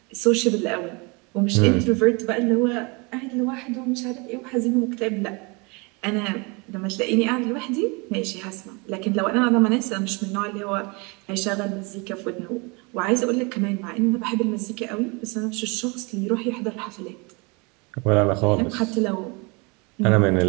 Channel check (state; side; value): quieter; left; 29.3 dB